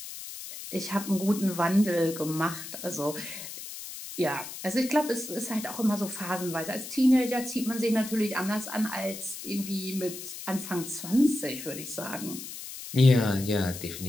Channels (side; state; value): left; noise; hiss, 10 dB below the sound